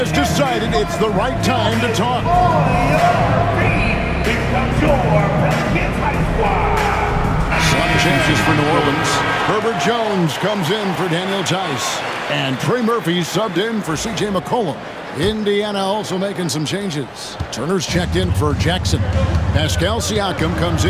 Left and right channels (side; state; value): both; identical; correlation 1.00